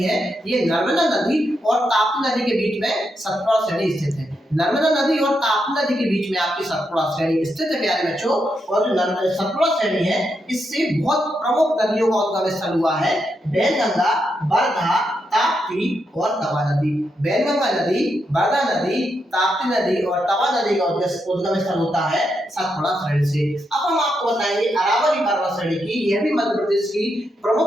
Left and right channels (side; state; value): both; normal; correlation 0.82